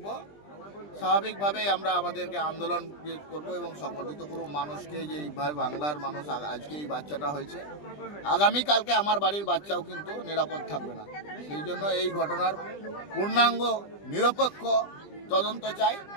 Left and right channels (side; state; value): right; late; 20 ms